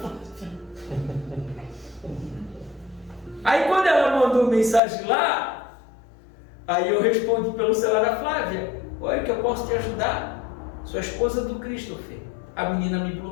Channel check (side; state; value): right; drops out; at 4.8 s